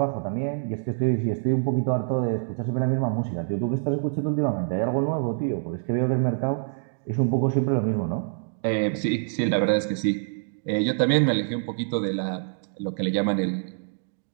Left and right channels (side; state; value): left; silent; digital silence